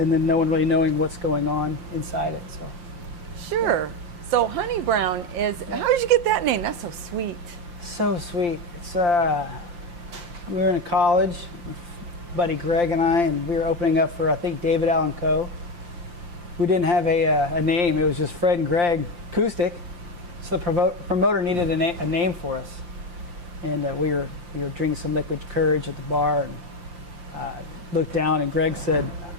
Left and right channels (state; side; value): late; left; 5.8 ms